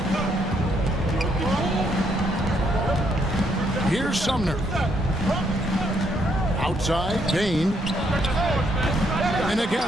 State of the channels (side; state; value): both; normal; correlation 0.73